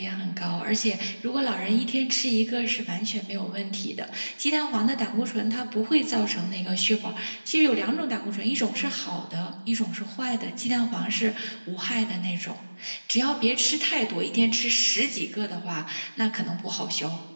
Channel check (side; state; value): both; inverted; correlation -1.00